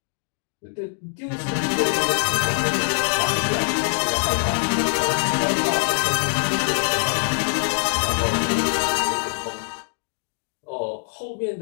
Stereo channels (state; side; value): silent; right; digital silence